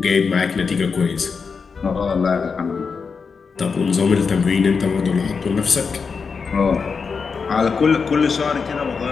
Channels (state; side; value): quieter; right; 5.4 dB